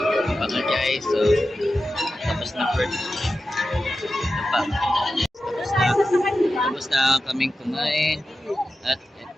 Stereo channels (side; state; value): both; normal; correlation 0.92